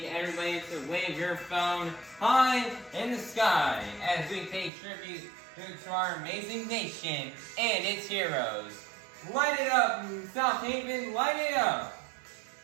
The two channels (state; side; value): drops out; left; at 4.7 s